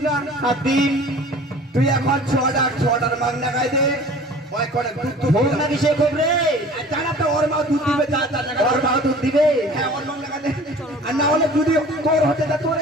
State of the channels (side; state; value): both; normal; correlation 0.45